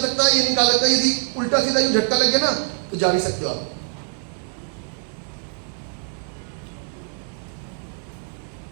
है ये नहीं कहा सकता। यदि उल्टा सीधा यूं झटका लग गया ना तो जा भी सकते हो आप।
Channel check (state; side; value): silent; left; 60 dB below the other